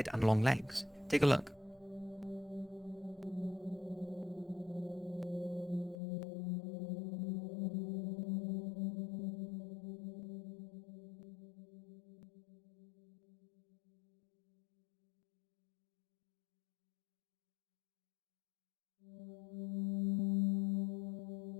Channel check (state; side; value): drops out; right; at 6.0 s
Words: and long legs. Take a look.